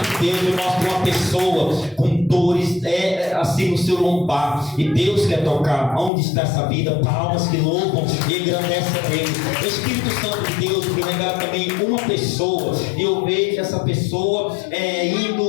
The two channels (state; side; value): drops out; right; at 6.1 s